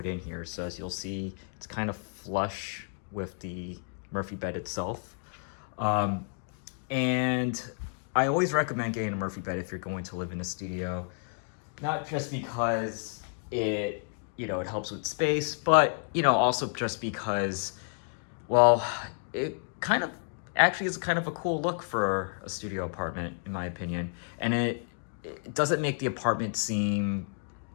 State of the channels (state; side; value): silent; right; 57 dB below the other